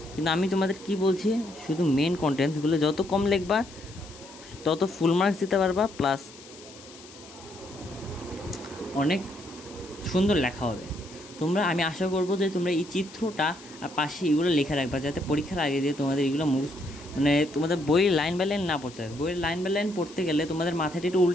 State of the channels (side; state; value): left; noise; hiss, 20 dB below the sound